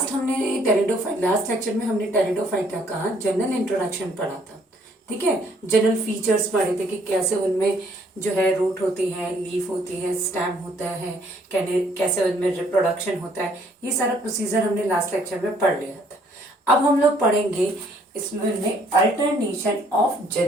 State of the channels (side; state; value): both; normal; correlation 0.64